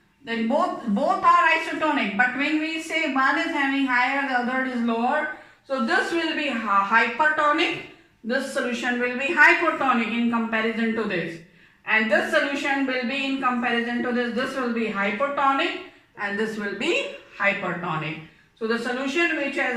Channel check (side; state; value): both; identical; correlation 1.00